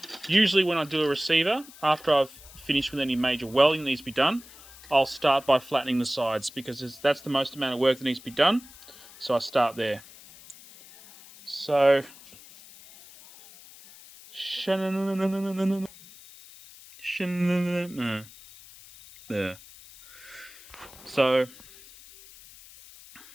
when I do a receiver, after I've finished with any major welding that needs to be done, I'll start by flattening the sides because that's the most amount of work that needs to be done. So I start there. So there. So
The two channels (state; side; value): noise; left; hiss, 20 dB below the sound